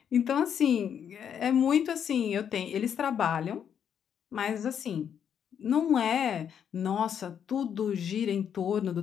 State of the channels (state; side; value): quieter; right; 8.4 dB